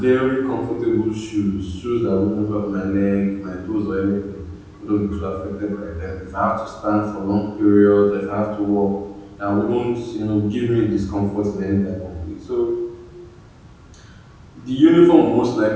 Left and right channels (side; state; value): both; identical; correlation 1.00